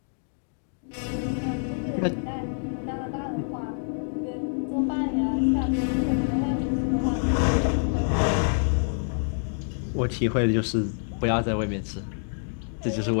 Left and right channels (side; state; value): right; silent; digital silence